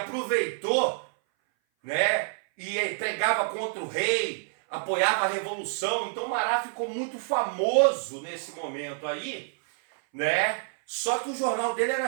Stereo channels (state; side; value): silent; left; 58 dB below the other